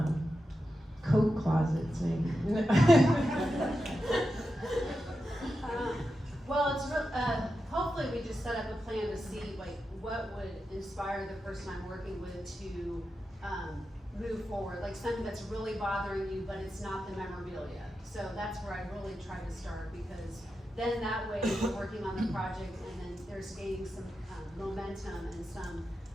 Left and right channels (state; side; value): normal; both; correlation 0.89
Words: coat closets, maybe? Well, it's hopefully we just set up a plan to see like what would inspire the person I'm working with to move forward, like something that's really bothering you, but it's not the memorabilia. So that's where I really try to start, because then that way we're working on the project, and then there's gaining some momentum and some